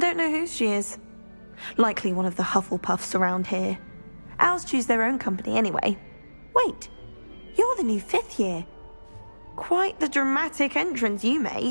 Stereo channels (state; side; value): inverted; both; correlation -1.00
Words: know whose she is. Likely one of the Hufflepuffs around here. Owls choose their own company anyway. Wait, you're the new 5th year. Quite the dramatic entrance you